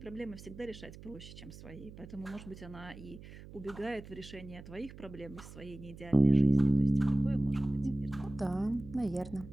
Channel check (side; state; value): right; noise; hum, 16 dB below the sound